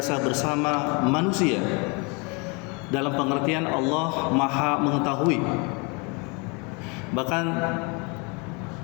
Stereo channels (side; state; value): right; quieter; 31.0 dB